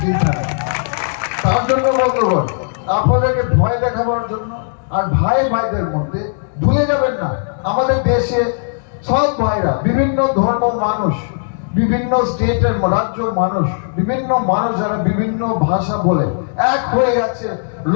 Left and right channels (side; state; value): right; silent; digital silence